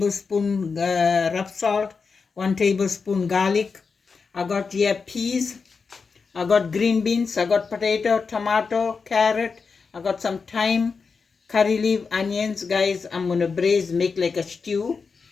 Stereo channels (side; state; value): right; quieter; 5.0 dB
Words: rough salt, 1 tablespoon garlic. I got here peas. I got green beans, I got potato, tomato, carrot, I got some thyme, curry leaf, onions. Guys, I'm going to braise, make like a stew.